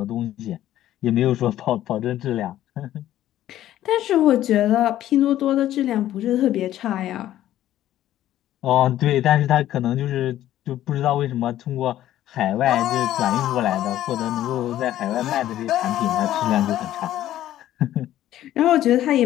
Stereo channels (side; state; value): right; quieter; 13.0 dB